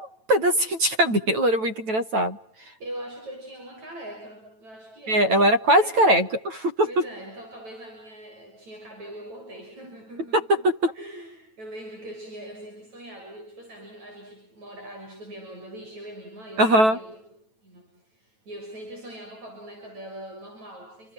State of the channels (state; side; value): late; left; 9.1 ms